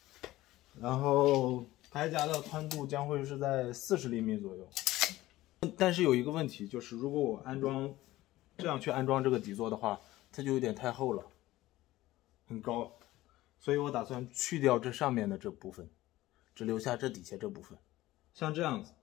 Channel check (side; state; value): right; quieter; 16.7 dB